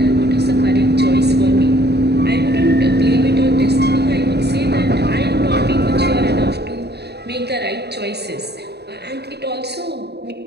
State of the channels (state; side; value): late; left; 0.48 ms